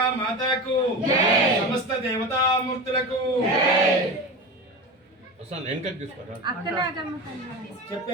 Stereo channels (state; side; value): normal; both; correlation 0.26